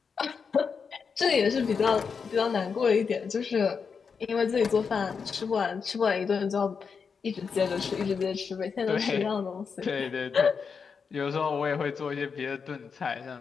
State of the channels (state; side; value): quieter; right; 5.8 dB